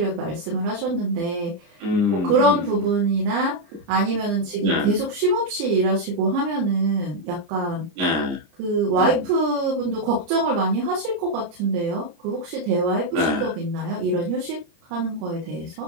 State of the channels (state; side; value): late; left; 30 ms